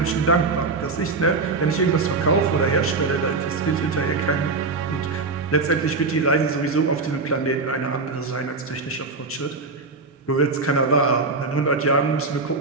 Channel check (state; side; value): quieter; left; 3.9 dB